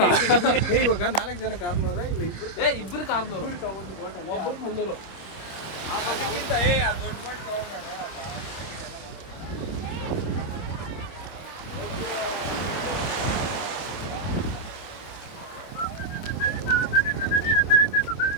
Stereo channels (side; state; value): right; late; 26 ms